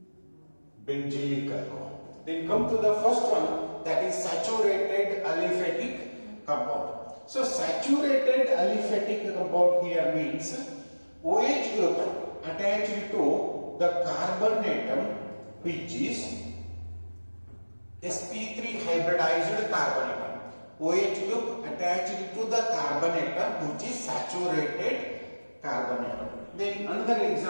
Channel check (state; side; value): inverted; both; correlation -1.00